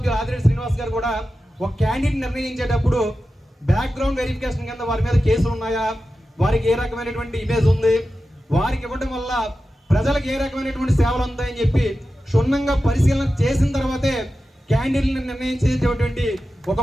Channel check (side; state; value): both; normal; correlation 0.93